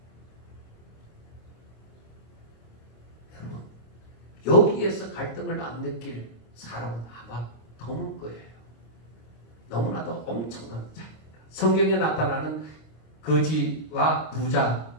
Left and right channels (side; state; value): right; late; 26 ms